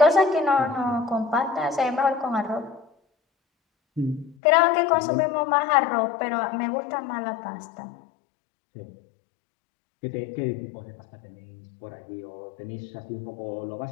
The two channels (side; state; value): right; drops out; at 4.4 s